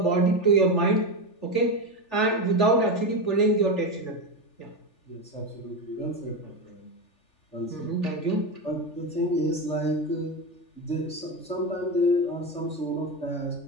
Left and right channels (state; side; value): late; right; 3.4 ms